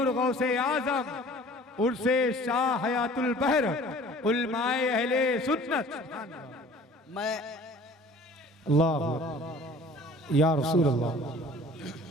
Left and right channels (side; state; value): both; normal; correlation 0.48